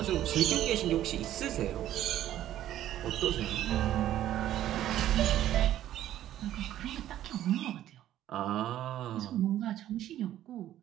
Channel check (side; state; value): left; quieter; 12.5 dB